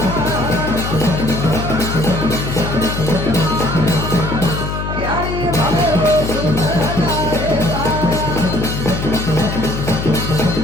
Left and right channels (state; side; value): noise; left; hum, 4 dB below the sound